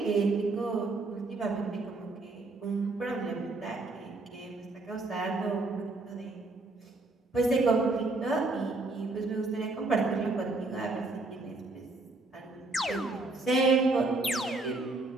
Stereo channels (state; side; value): quieter; left; 3.2 dB